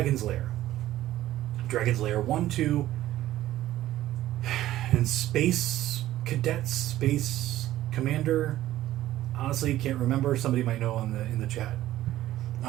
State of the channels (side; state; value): left; quieter; 14.2 dB